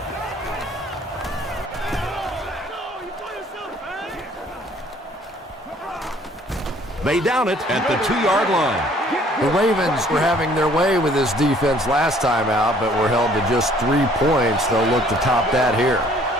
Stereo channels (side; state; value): both; normal; correlation 0.59